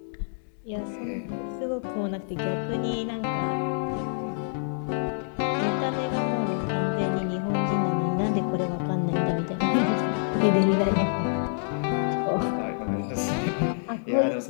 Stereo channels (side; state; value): right; silent; digital silence